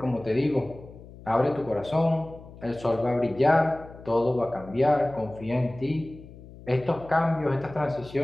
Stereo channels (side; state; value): left; noise; hum, 18 dB below the sound